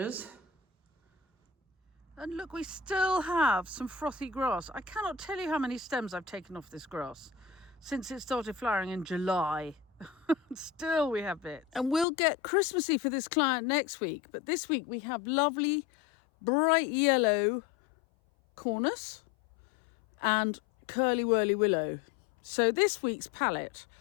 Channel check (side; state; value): right; drops out; at 12.1 s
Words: And look, we still have some frothy grass. I cannot tell you how many stems I've taken off this grass since it started flowering in July. Still we have bits. And we'll get Christmassy for this client next week. But this week we have lovely, bright yellow cornus and curly whirly willow. So this week's palette